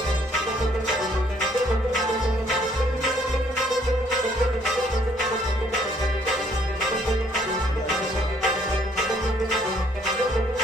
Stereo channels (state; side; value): normal; both; correlation 0.64